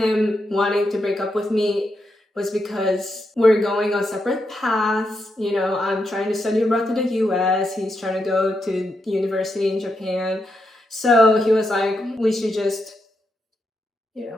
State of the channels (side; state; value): both; normal; correlation 0.83